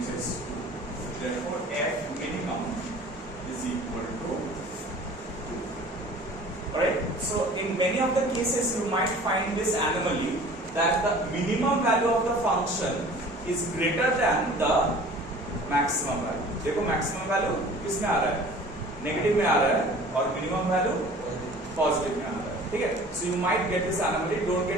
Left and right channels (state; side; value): normal; both; correlation 0.46